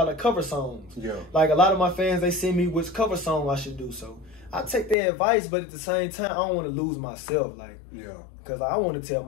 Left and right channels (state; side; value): drops out; right; at 5.0 s